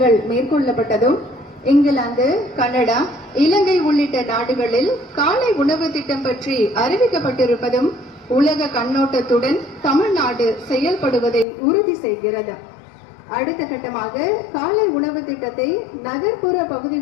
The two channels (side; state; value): right; drops out; at 11.5 s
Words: மேற்கொள்ளப்பட்டதும், இங்கிலாந்து, கனடா, இலங்கை உள்ளிட்ட நாடுகளில் காலை உணவு திட்டம் பற்றி அறிவிக்கப்பட்டிருப்பதும் உலக கண்ணோட்டத்துடன் தமிழ்நாடு செயல்படுவதை உறுதி செய்கிறது. அடுத்த கட்டமாக காலை உணவு திட்டத்தை நகர்ப்புற